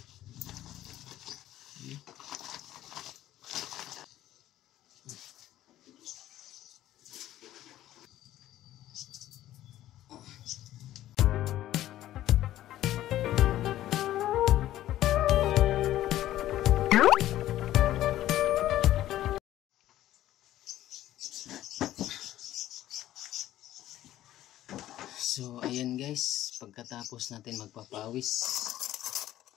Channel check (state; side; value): quieter; right; 13.6 dB